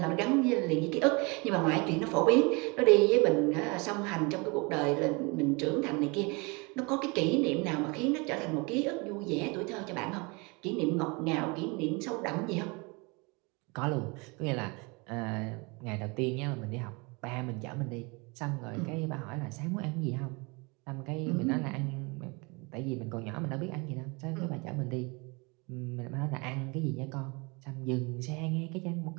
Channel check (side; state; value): left; quieter; 28.7 dB